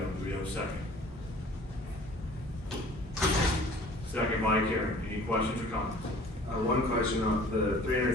Do we have a second? Second by Karen. Any questions or comments? One question on the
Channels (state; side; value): normal; both; correlation 0.49